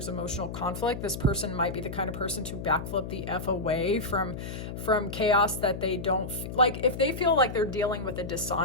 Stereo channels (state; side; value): noise; left; hum, 7 dB below the sound